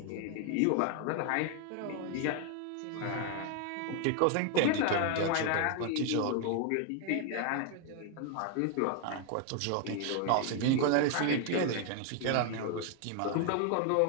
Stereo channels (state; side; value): different; both; correlation 0.00